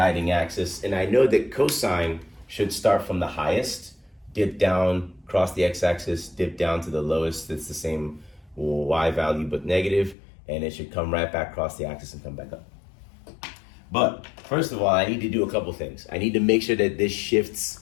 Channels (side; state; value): right; drops out; at 10.2 s